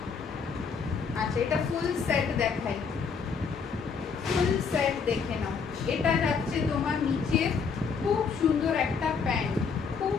আচ্ছা এটা ফুল সেট দেখাই, ফুল সেট দেখে নাও। এটা যাচ্ছে তোমার নিচে খুব সুন্দর একটা প্যান্ট, খুব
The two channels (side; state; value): right; quieter; 5.7 dB